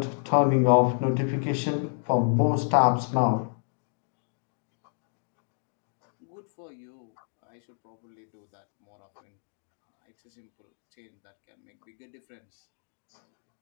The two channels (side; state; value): right; silent; digital silence